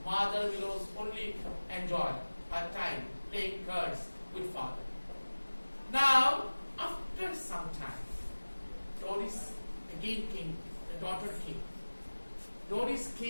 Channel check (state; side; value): inverted; both; correlation -1.00